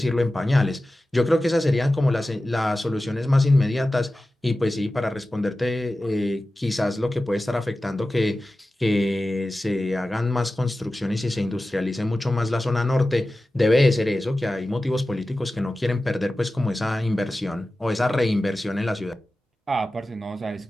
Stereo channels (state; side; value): normal; both; correlation 0.95